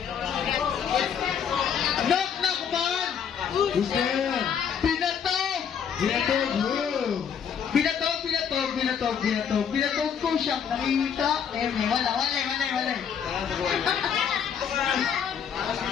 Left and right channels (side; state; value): right; quieter; 7.7 dB